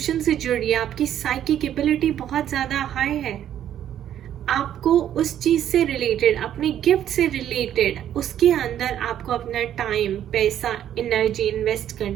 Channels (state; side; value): quieter; left; 10.7 dB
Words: से जुड़िए, आपकी साइकिक एबिलिटी बहुत ज्यादा हाई है। आपको उस चीज से रिलेटेड, अपने गिफ्ट से रिलेटेड, उसके अंदर आपको अपना टाइम, पैसा, एनर्जी इन्वेस्ट